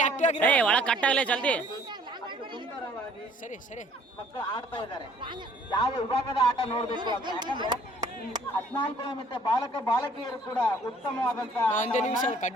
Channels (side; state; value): both; normal; correlation 0.58